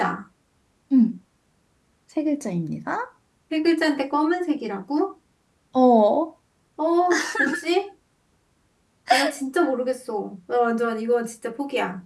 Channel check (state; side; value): identical; both; correlation 1.00